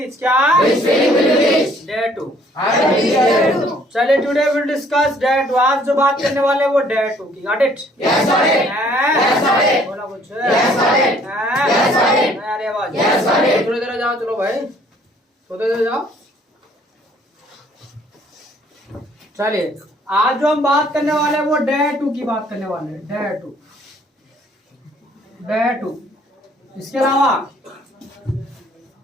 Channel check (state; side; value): normal; both; correlation 0.60